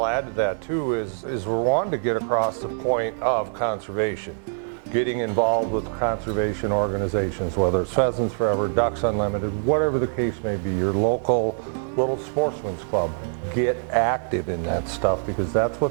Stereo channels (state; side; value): silent; left; digital silence